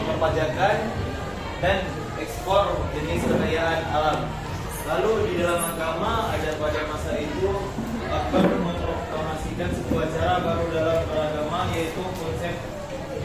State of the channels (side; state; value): both; identical; correlation 1.00